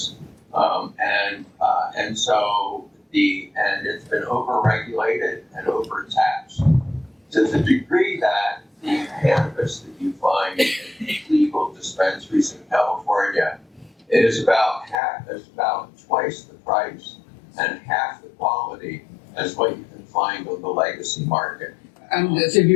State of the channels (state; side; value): drops out; right; at 15.0 s